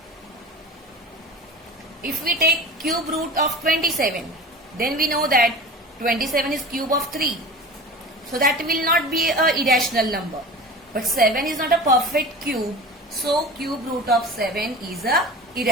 If we take cube root of 27, then we know that 27 is cube of 3. So that will not be an irrational number. But 7 is not a perfect cube. So cube root of 7 is a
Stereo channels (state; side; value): normal; both; correlation 0.35